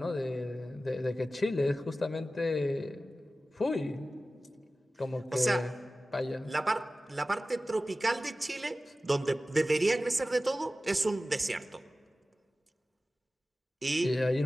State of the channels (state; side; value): normal; both; correlation 0.96